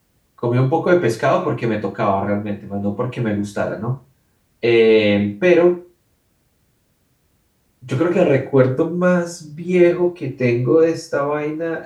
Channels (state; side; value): identical; both; correlation 1.00